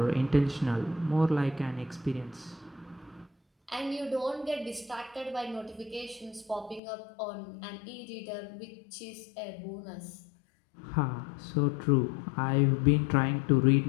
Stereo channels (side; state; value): right; drops out; at 6.8 s